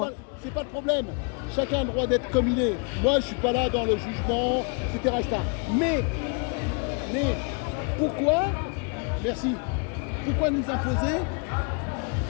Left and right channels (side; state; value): right; quieter; 37.2 dB